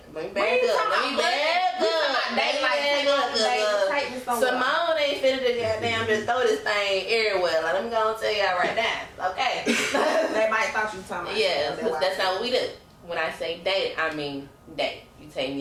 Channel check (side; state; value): both; identical; correlation 1.00